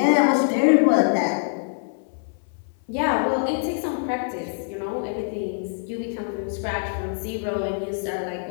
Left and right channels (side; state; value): right; silent; 60 dB below the other